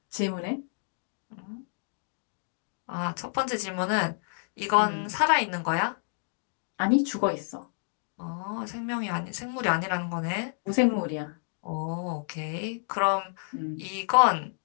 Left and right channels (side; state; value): right; silent; digital silence